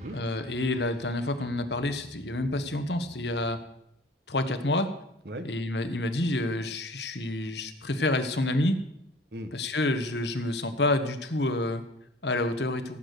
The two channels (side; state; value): both; normal; correlation 0.45